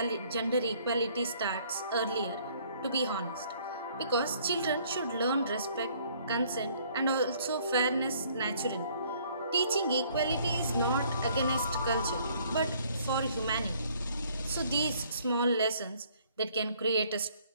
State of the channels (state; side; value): inverted; both; correlation -0.62